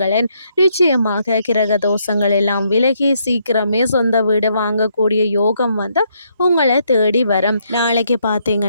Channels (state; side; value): inverted; both; correlation -0.74